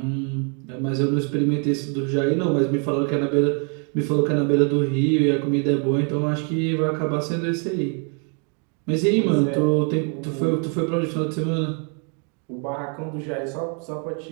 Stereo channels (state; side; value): quieter; left; 39.5 dB